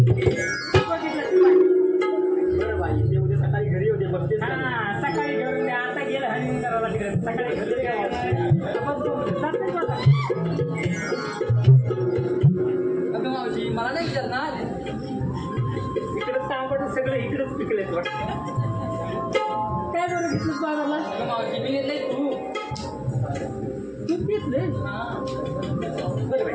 बघितलं बरं बाई ते उद्या सकाळी घरी होते बघते. हा सकाळी घेऊन द्या आता गेलं हनीमून करायला तिकडे सकाळी घरी काय अगं मावशी मला नाही विचारणार. इकडं तांबट सगळं इकडेच पिकलेत वाटतं. काय बरं घेतलं बाजारला अगं मावशी मी घेतलंय तू तू घेतले बरं बाई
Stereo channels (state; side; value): identical; both; correlation 1.00